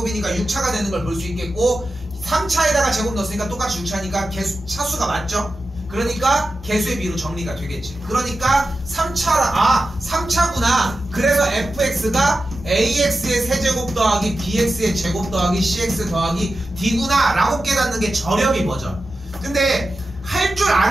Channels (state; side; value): normal; both; correlation 0.92